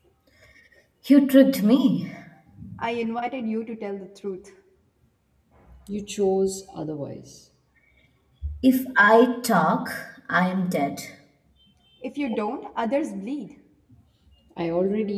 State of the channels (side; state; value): both; identical; correlation 1.00